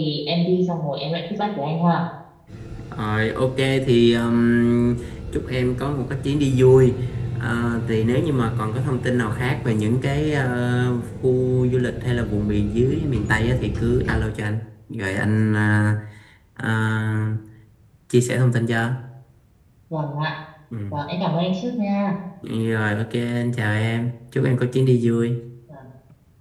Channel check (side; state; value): both; identical; correlation 1.00